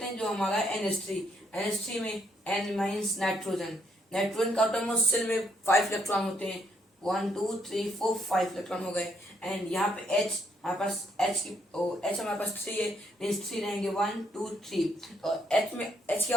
हैं जो हमारा NH3 में N मींस नाइट्रोजन का आउटर मोस्ट सेल में 5 इलेक्ट्रॉन होते हैं. 1 2 3 4 5 इलेक्ट्रॉन हो गए एंड यहाँ पे H हमारे पास H हमारे पास 3 है मींस 3 रहेंगे 1 2 3. और H के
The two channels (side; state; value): both; normal; correlation 0.72